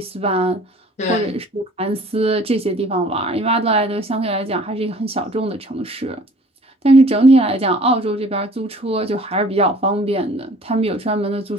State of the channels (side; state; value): both; normal; correlation 0.51